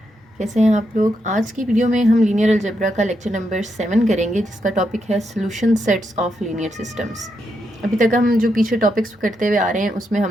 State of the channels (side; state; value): both; normal; correlation 0.82